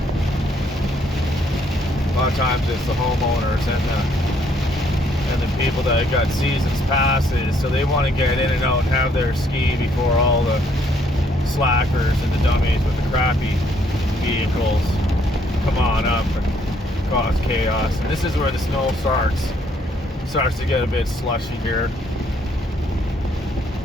A lot of times it's the homeowners and the people that got seasons passes, so they want to get in and out and have their ski before all the slackers and the dummies with the crappy vehicles come on up and cause chaos. And this is where the snow starts to get a bit slushy here.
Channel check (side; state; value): both; normal; correlation 0.68